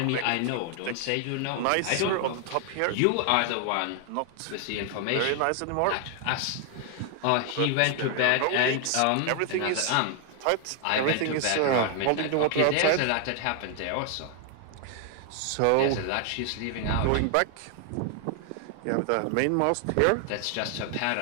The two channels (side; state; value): both; different; correlation 0.00